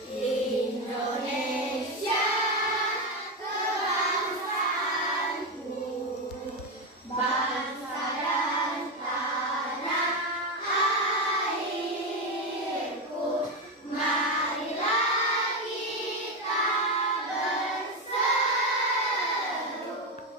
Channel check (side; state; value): both; normal; correlation 0.12